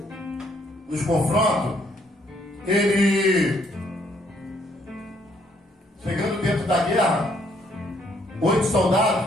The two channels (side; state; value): both; normal; correlation 0.68